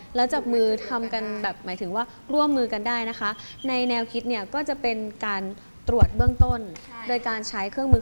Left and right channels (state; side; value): inverted; both; correlation -1.00